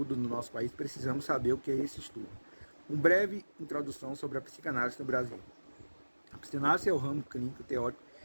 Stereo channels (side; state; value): both; inverted; correlation -1.00